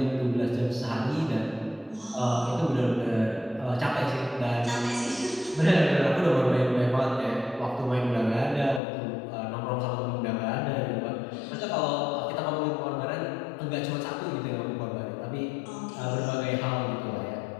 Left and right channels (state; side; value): drops out; right; at 8.8 s